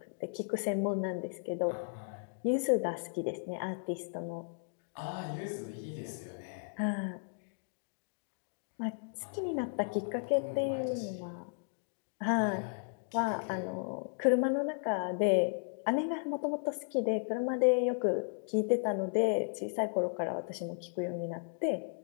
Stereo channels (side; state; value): right; silent; digital silence